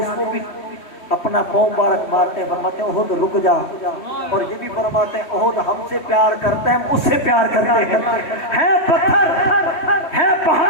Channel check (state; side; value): late; right; 3.2 ms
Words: کو بھی اپنا پاؤں مبارک مارتے ہیں، فرماتے ہیں احد رک جا، اور یہ بھی فرماتے ہیں احد ہم سے پیار کرتے ہیں، ہم اس سے پیار کرتے ہیں، ہے پتھر ہے